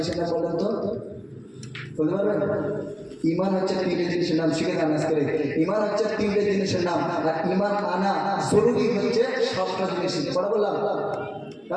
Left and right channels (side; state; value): both; identical; correlation 1.00